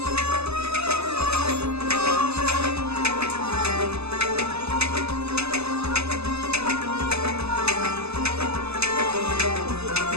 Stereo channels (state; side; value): late; left; 0.79 ms